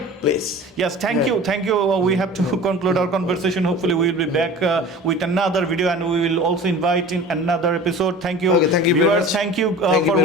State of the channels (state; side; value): normal; both; correlation 0.40